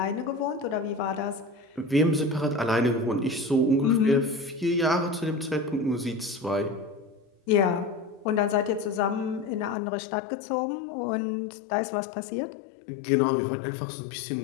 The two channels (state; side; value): drops out; right; at 9.8 s